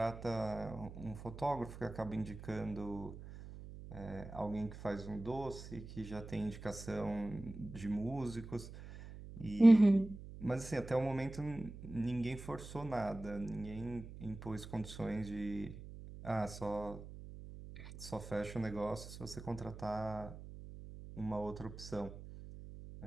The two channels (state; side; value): noise; right; hum, 13 dB below the sound